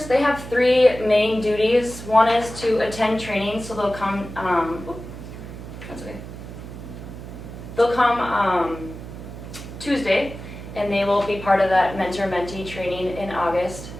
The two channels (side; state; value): right; noise; hum, 12 dB below the sound